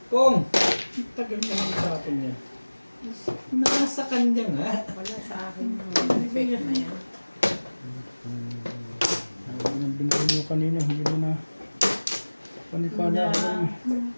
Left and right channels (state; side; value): inverted; both; correlation -1.00